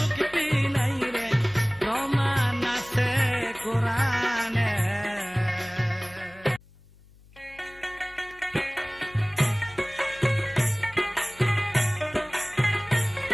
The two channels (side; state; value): left; noise; hum, 25 dB below the sound